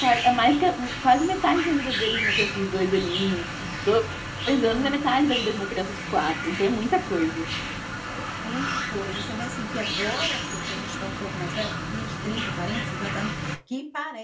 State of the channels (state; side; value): identical; both; correlation 1.00